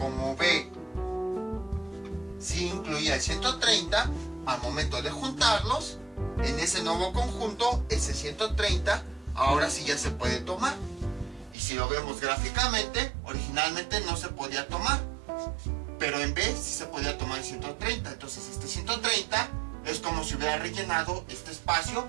B sí incluía el 130, al momento de juntarlos, en ese nuevo conjunto, ese 130, ahora sí ya se puede tomar. Y si lo vemos gráficamente, originalmente no se podía tomar, pero en B sí se podía tomar el 130. Entonces este 130 es como si hubiera rellenado este espacio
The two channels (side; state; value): left; drops out; at 11.6 s